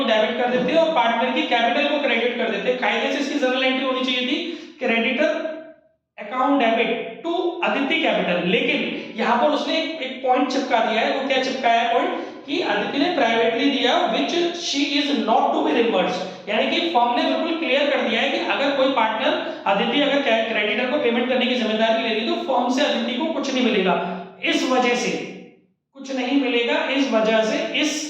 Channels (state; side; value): identical; both; correlation 1.00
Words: डेबिट कर देते हैं और पार्टनर की कैपिटल को क्रेडिट कर देते हैं। कायदे से इसकी जनरल एंट्री होनी चाहिए थी creditor account debit to Aditi capital. लेकिन यहां पर उसने एक पॉइंट चिपका दिया है। वो क्या चिपकाया है पॉइंट कि अदिति ने प्राइवेटली दिया which she is not to be reimbursed, यानी कि फर्म ने बिल्कुल क्लियर कर दिया है कि अगर कोई पार्टनर अदिति अगर क्रेडिटर को पेमेंट करने की जिम्मेदारी ले रही तो फर्म से अदिति को कुछ नहीं मिलेगा। इस वजह से कुछ नहीं मिलेगा, इस वजह से